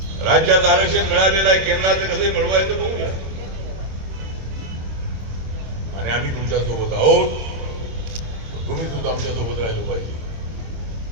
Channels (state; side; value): late; left; 26 ms